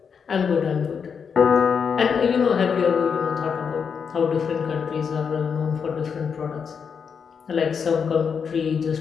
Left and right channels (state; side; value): quieter; right; 6.4 dB